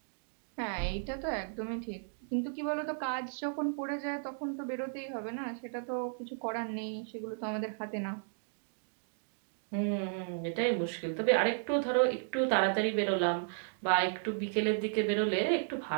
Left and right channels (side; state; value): left; silent; digital silence